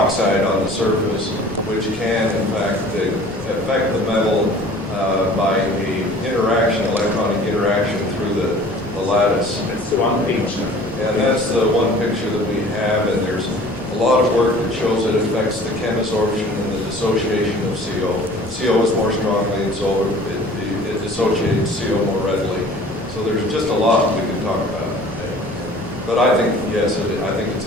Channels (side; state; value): both; normal; correlation 0.47